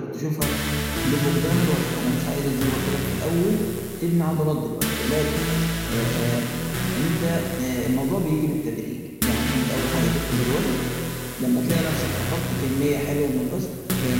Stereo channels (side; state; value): both; identical; correlation 1.00